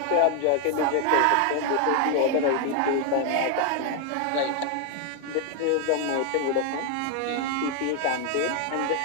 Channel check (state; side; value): different; both; correlation 0.01